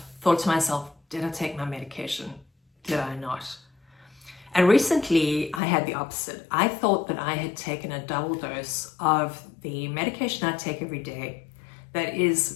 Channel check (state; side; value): drops out; right; at 5.6 s